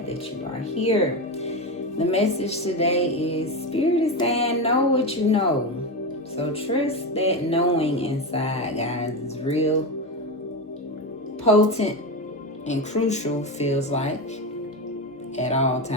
that you are here. The message today is Spirit is saying know what you know. So trust that knowing inside, guys, is real potent and crucial, feels like, at all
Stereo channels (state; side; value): normal; both; correlation 0.16